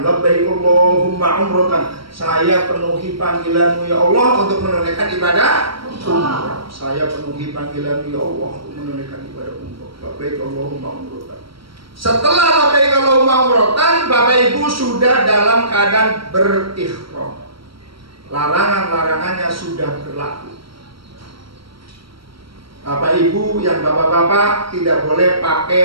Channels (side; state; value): left; late; 0.74 ms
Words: Labbaik Allahumma umratan. Saya penuhi panggilanmu ya Allah untuk menunaikan ibadah umrah. Saya penuhi panggilanmu ya Allah untuk menunaikan ibadah umrah. Labbaik Allahumma umratan. Setelah labbaik Allahumma umratan, Bapak Ibu sudah dalam keadaan berihram. Larangan-larangannya sudah berlaku. Bapak Ibu yang bapak-bapak tidak boleh